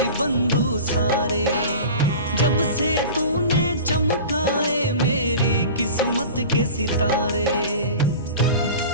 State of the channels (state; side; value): inverted; both; correlation -0.36